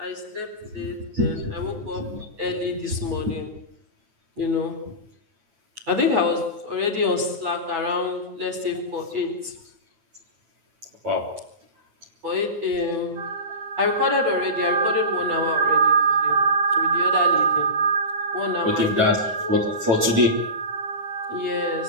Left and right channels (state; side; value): late; left; 8.8 ms